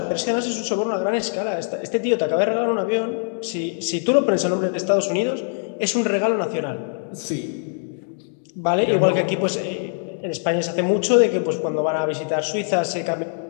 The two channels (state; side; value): silent; right; digital silence